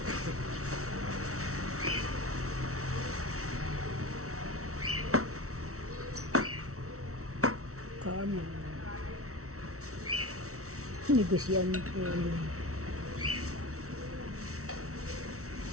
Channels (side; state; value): left; late; 0.64 ms